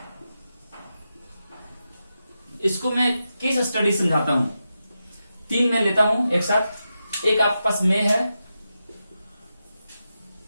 इसको मैं केस स्टडी समझाता हूं। 3 में लेता हूं एक साथ। एक आपके पास में है,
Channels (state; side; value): inverted; both; correlation -0.89